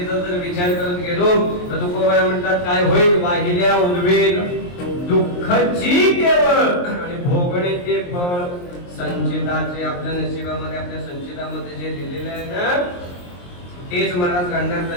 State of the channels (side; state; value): right; late; 23 ms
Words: जर विचार करत गेलो तर तुकोबारा म्हणतात, काय होईल? वाहिल्या उर्वेल दुःखाची केवळ, आणि भोगणे ते फळ संचिताचे. आपल्या नशिबामध्ये आपल्या संचितामध्ये जे लिहिलेले आहे ना तेच महाराज घडणार.